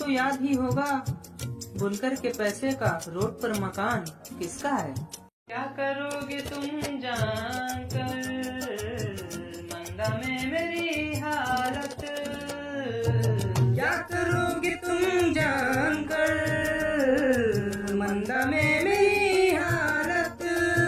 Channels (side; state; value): both; identical; correlation 1.00